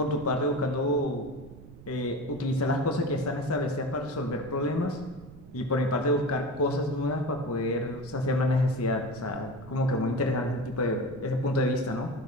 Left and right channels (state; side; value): noise; right; rumble, 18 dB below the sound